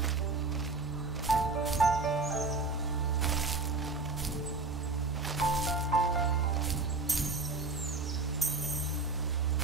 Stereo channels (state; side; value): quieter; left; 3.6 dB